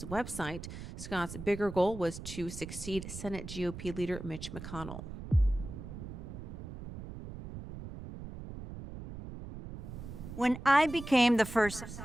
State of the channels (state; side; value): noise; right; rumble, 10 dB below the sound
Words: website. Scott's bigger goal was to succeed Senate GOP leader Mitch McConnell. When I became the first...